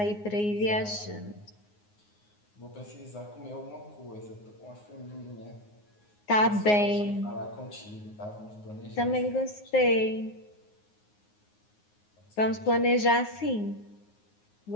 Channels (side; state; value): right; late; 9.6 ms